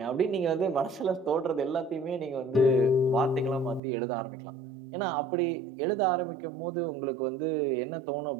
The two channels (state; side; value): drops out; left; at 3.8 s